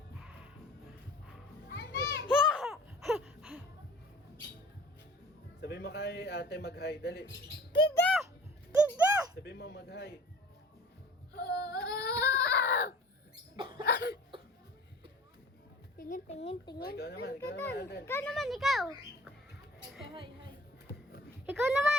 Sabi mo kay ate mag-hi. Dali. Tiga! Tiga! Sabi mo mag-hi. Tingin. Ikaw naman, Alden. Ikaw naman, ikaw. Okay, hi. Ikaw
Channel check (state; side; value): normal; both; correlation 0.45